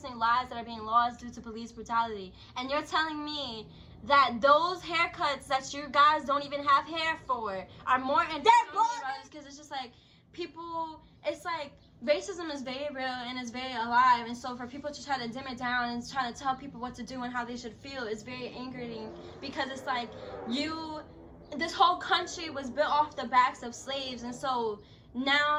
lives that are being lost due to police brutality. And you're telling me that those haircuts that you guys don't even have hair for are more important because it's just like people, it's like racism is very real and it's very alive, and so for people to try to dim it down and try to tell people what to do and how they should feel is very angering, because it's like this whole country was built off the backs of slaves, and so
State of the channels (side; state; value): both; identical; correlation 1.00